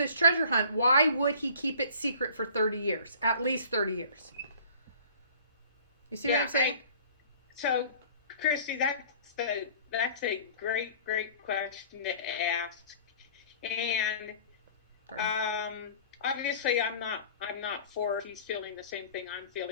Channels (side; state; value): both; inverted; correlation -0.48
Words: treasure hunt, why would he keep it secret for 30 years? At least 30 years. You see what I'm saying? So, Christy, that's a great question to ask. And obviously I'm not for he's feeling the same thing I'm